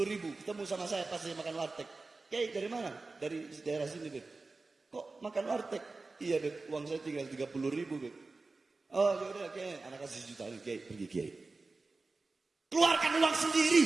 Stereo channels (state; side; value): quieter; left; 3.6 dB